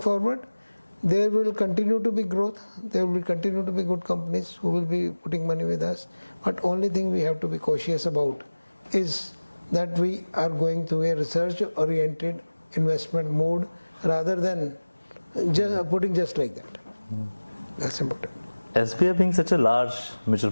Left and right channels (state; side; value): inverted; both; correlation -1.00